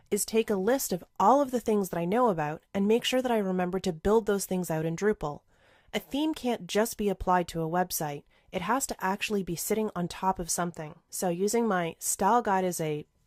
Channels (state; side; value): identical; both; correlation 1.00